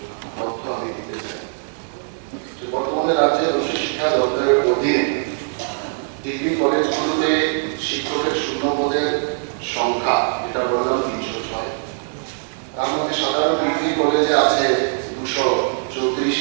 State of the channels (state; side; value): silent; left; 62 dB below the other